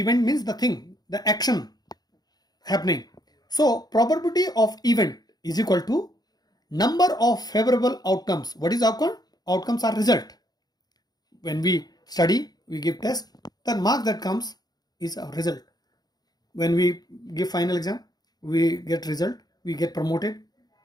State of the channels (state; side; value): late; right; 0.19 ms